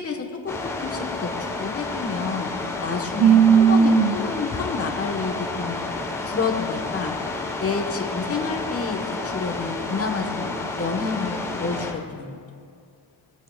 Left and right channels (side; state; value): both; normal; correlation 0.49